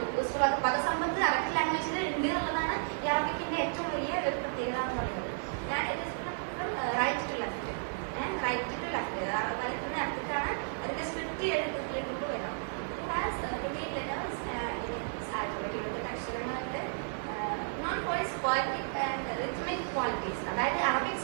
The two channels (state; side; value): silent; left; digital silence